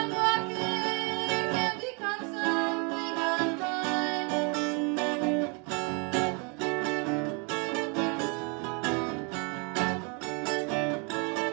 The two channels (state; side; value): quieter; left; 34.4 dB